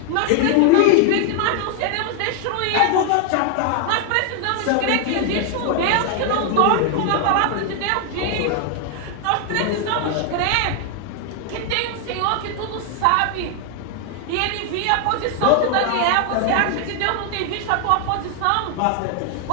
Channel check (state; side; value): different; both; correlation 0.00